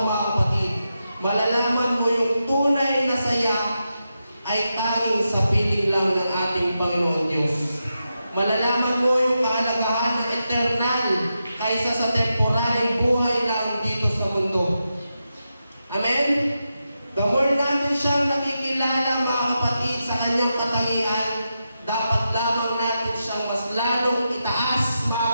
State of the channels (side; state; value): both; inverted; correlation -0.88